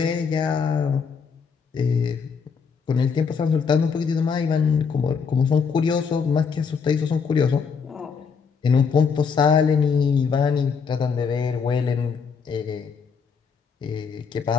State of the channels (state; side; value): quieter; right; 5.9 dB